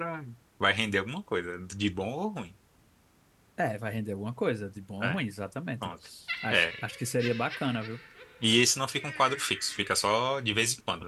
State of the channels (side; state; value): both; identical; correlation 1.00